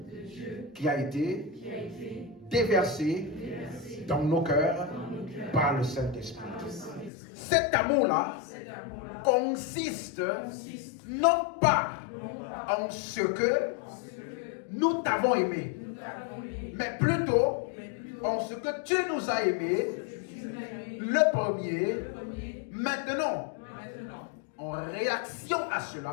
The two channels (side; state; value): right; drops out; at 7.1 s